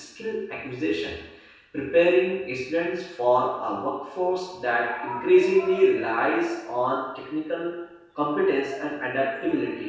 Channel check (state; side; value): identical; both; correlation 1.00